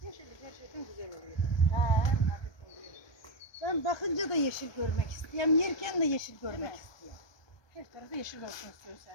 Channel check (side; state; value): right; late; 1.2 ms